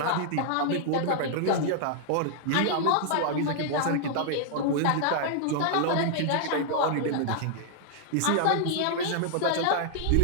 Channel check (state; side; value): different; both; correlation -0.01